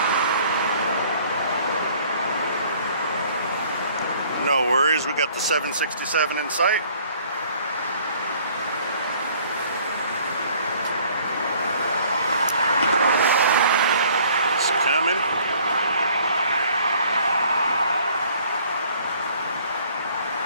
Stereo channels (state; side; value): inverted; both; correlation -0.57